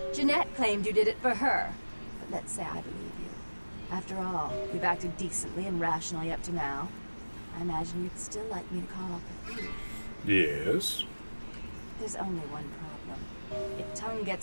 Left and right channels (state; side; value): inverted; both; correlation -1.00